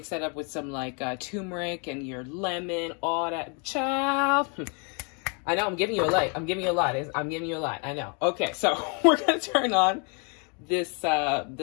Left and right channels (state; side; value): quieter; right; 36.3 dB